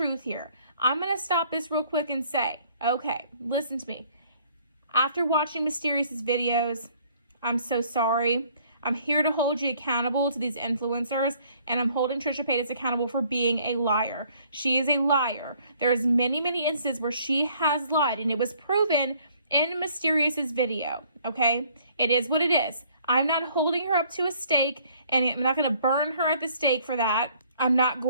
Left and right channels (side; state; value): both; inverted; correlation -0.60